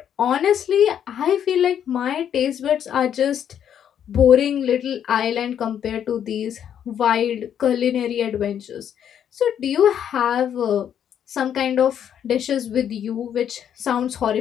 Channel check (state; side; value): quieter; right; 9.2 dB